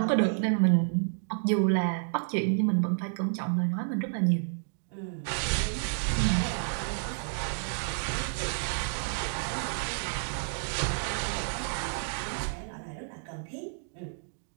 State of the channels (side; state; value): left; silent; digital silence